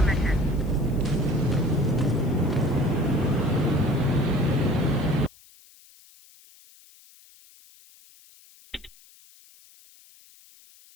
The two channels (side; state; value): left; noise; hiss, 26 dB below the sound